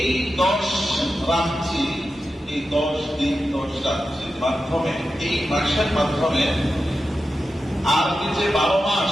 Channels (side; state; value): both; normal; correlation 0.91